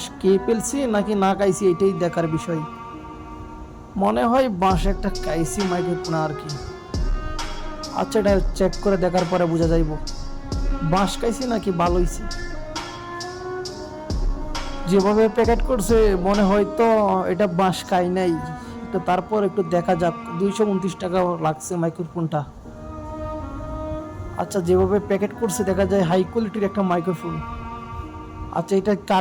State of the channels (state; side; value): identical; both; correlation 1.00